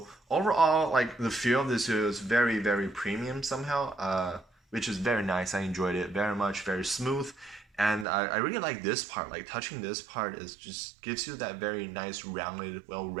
overall, like the feel of this is very, very premium somehow, which is very nice. I enjoyed it very much, very smooth. And I really like this part, like touching this part is just gives you that very nice rounded,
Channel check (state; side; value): drops out; left; at 8.1 s